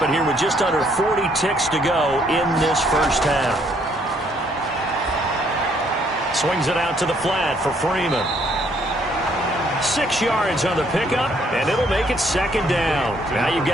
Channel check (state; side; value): normal; both; correlation 0.67